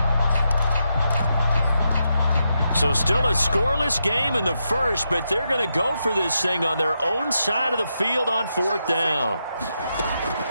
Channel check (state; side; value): inverted; both; correlation -0.84